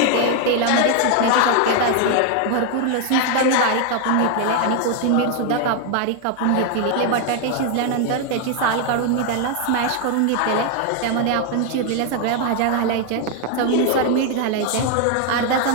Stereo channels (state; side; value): different; both; correlation 0.01